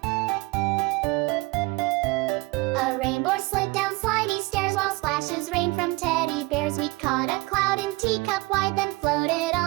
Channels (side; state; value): left; quieter; 23.8 dB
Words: A rainbow slid down slidey stairs while splashes rained from teddy bears. We caught a cloud in teacup wide, then floated